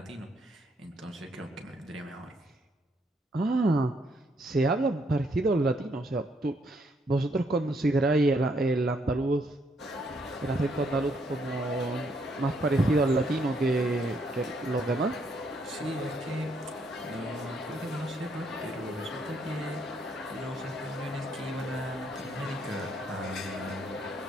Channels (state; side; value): normal; both; correlation 0.72